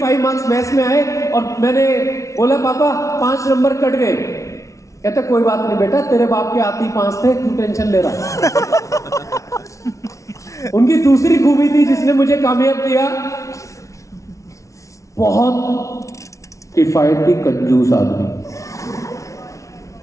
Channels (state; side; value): late; right; 0.15 ms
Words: मार्क्स मैथ्स में आए और मैंने बोला, पापा 5 नंबर कट गए। कहते कोई बात नहीं बेटा, तेरे बाप के आते ही 5 थे, क्यों टेंशन ले रहा। उनकी दूसरी खूबी थी जिसने मुझे कामयाब किया, बहुत किफायती कंजूस आदमी।